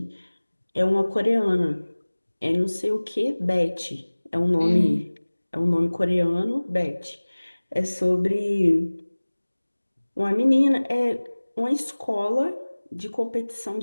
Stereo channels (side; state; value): both; inverted; correlation -1.00